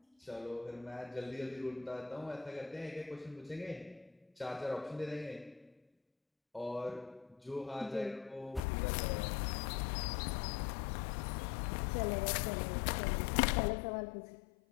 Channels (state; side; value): drops out; right; at 8.6 s